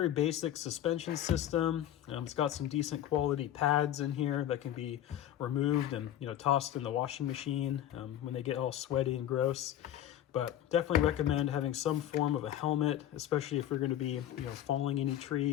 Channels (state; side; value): quieter; right; 11.6 dB